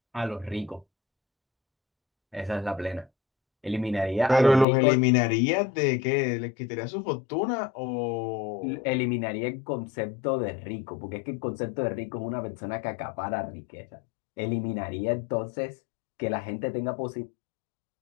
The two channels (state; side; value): drops out; right; at 4.7 s